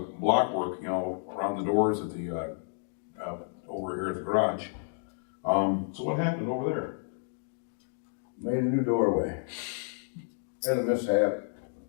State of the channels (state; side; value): silent; right; digital silence